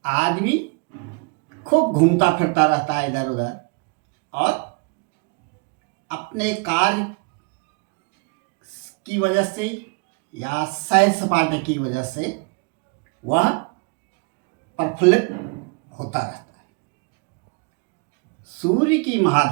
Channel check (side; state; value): left; quieter; 33.7 dB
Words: आदमी खूब घूमता फिरता रहता है इधर उधर और अपने कार्य की वजह से या सैर सपाटे की वजह से वह प्रफुल्लित होता रहता है। सूर्य की